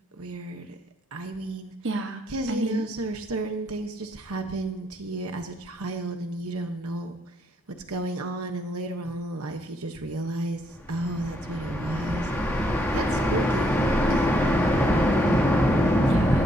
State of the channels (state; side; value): normal; both; correlation 0.72